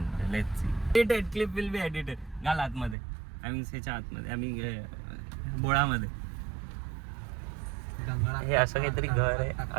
let's see. Edited clip will be edited. घाल आतमध्ये, ह्याच्या आतमध्ये, आम्ही बोळामध्ये. हे असं काहीतरी घर आहे,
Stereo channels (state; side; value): drops out; left; at 3.0 s